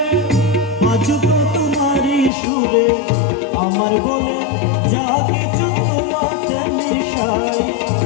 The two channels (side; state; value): right; drops out; at 2.3 s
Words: বাজুক তোমারি সুরে, আমার বলে যা কিছু তোমাতে মিশাই,